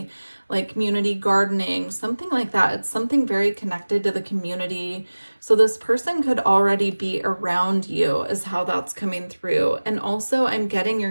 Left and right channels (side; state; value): both; inverted; correlation -1.00